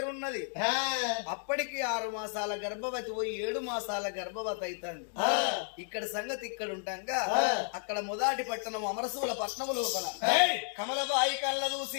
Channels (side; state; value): right; silent; digital silence